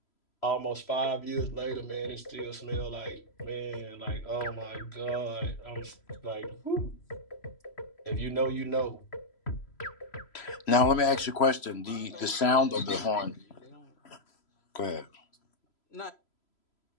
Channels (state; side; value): late; right; 3.0 ms